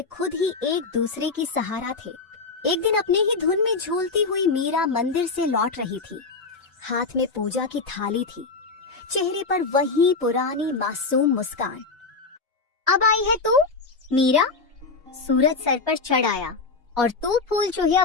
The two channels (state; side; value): quieter; right; 4.1 dB